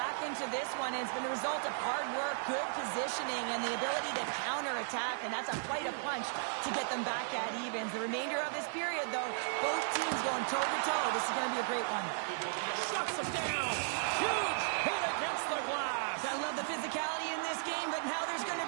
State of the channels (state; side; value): silent; left; digital silence